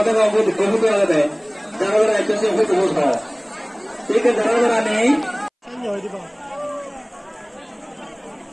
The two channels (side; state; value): both; identical; correlation 1.00